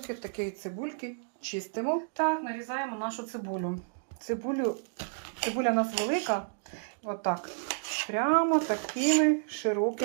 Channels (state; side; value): silent; left; digital silence